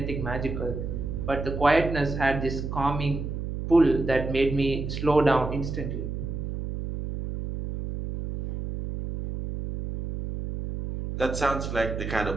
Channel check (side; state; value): right; noise; hum, 5 dB below the sound